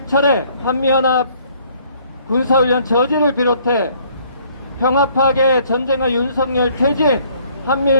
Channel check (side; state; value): both; inverted; correlation -0.61